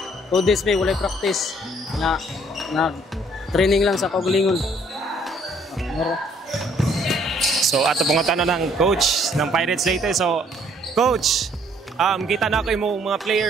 2 days may walay practice na training lang sa kaugalingon. So ato pangutana ng coach ng Pirates Leyte. So coach, kita na ko imong mga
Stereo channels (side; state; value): both; normal; correlation 0.63